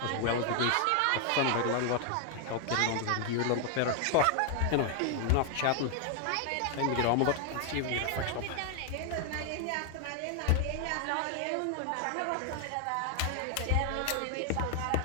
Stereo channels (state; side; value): different; both; correlation 0.00